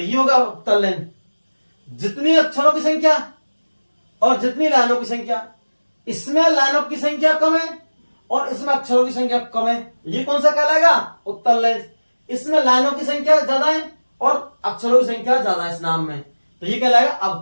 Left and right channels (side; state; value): both; inverted; correlation -1.00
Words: होगा उत्तल लेंस। जितनी अक्षरों की संख्या और जितनी लाइनों की संख्या। इसमें लाइनों की संख्या कम है और इसमें अक्षरों की संख्या कम है, ये कौन सा कहलाएगा? उत्तल लेंस। इसमें लाइनों की संख्या ज्यादा है और अक्षरों की संख्या ज्यादा है इस नाम में, तो ये कहलाएगा